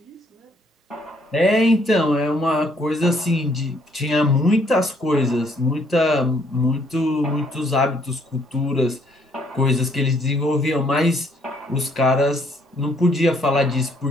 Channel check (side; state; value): both; normal; correlation 0.67